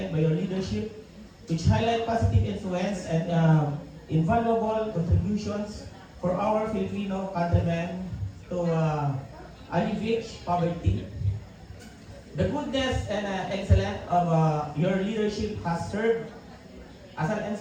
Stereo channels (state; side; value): identical; both; correlation 1.00